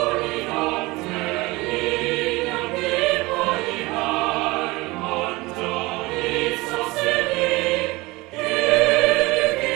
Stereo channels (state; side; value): quieter; left; 22.1 dB